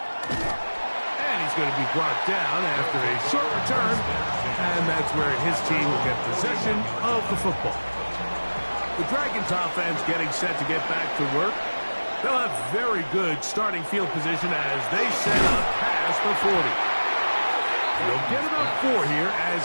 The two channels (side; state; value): both; inverted; correlation -1.00